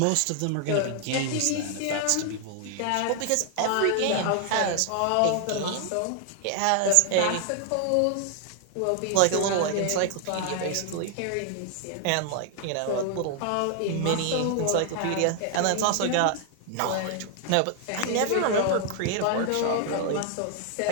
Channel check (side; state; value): both; different; correlation 0.00